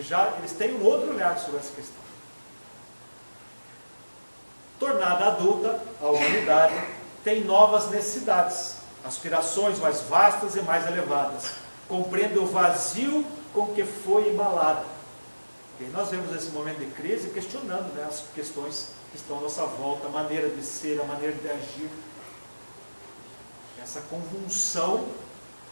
eles têm um outro olhar sobre essa questão. Tornada adulta, a humanidade tem novas necessidades, aspirações mais vastas e mais elevadas. Compreende o vazio com que foi embalada. E nós vemos esse momento de crise questionando, né, as questões que estão à nossa volta, a maneira de ser, a maneira de agir. Essa convulsão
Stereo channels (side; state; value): both; inverted; correlation -1.00